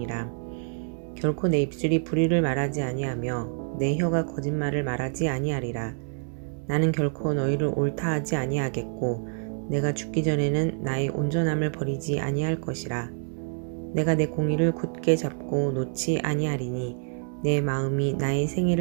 결코 내 입술이 불의를 말하지 아니하며 내 혀가 거짓말을 말하지 아니하리라. 나는 결코 너희를 옳다 하지 아니하겠고 내가 죽기 전에는 나의 온전함을 버리지 아니할 것이라. 내가 내 공의를 굳게 잡고 놓지 아니하리니 내 마음이 나의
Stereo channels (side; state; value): left; silent; 55 dB below the other